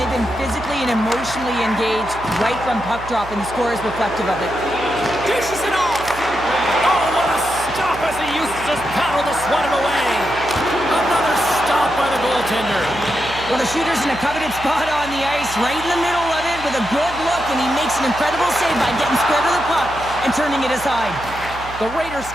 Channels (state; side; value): noise; right; hum, 14 dB below the sound